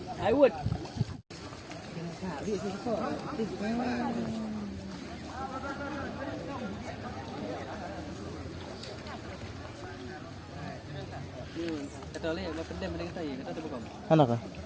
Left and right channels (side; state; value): both; identical; correlation 1.00